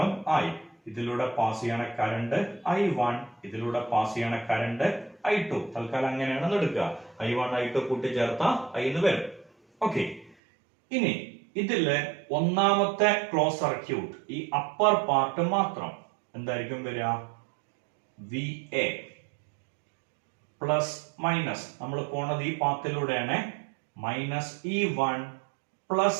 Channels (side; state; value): left; drops out; at 10.4 s